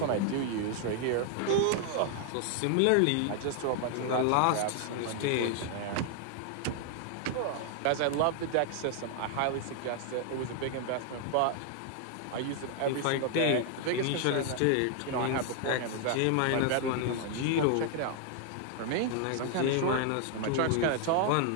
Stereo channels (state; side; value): different; both; correlation 0.00